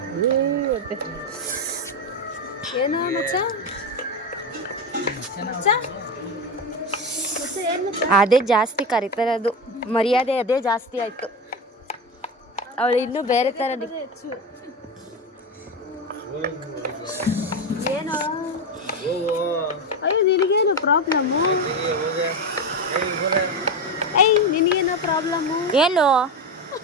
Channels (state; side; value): normal; both; correlation 0.17